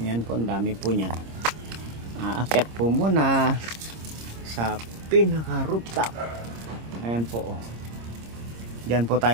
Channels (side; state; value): left; late; 26 ms